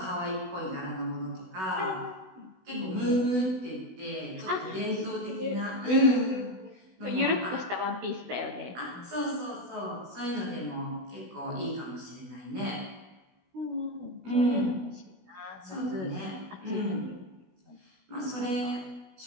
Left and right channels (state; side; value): late; left; 16 ms